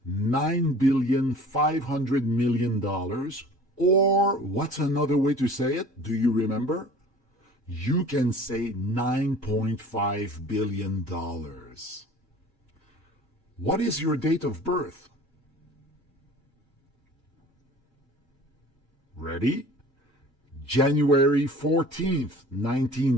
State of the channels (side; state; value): both; normal; correlation 0.45